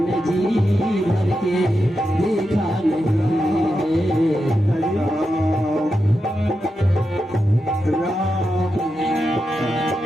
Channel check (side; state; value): both; normal; correlation 0.88